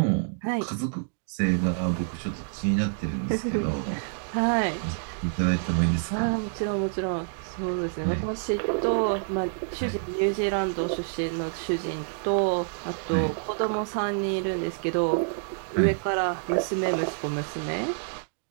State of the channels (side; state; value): left; silent; digital silence